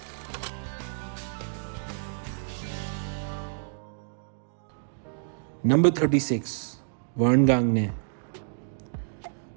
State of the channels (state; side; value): silent; left; digital silence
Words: Number 36, Vern Gagne.